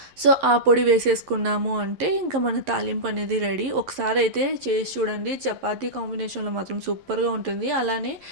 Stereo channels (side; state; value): left; late; 11 ms